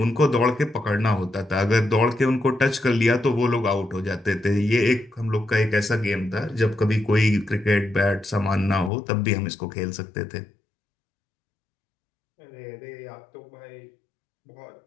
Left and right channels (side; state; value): right; drops out; at 8.9 s